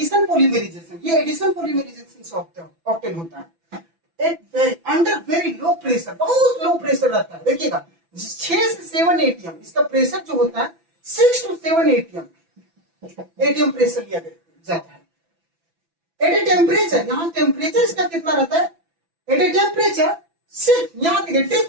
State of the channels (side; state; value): left; late; 6.0 ms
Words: polymerization. ये एडिशन पॉलीमराइजेशन से ऑब्टेन होता है अंडर वेरी लो प्रेशर, बहुत लो प्रेशर रहता है। देखिएगा 6 से 7 एटीएम इसका प्रेशर जो होता है, 6 to 7 एटीएम प्रेशर लिया जाता है। एट ए टेम्परेचर, यहाँ टेम्परेचर इसका कितना रहता है, एट ए टेम्परेचर सिर्फ यहाँ देखिए